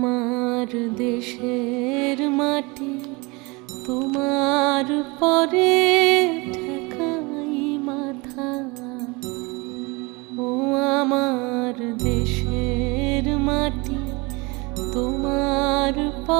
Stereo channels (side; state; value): left; quieter; 26.4 dB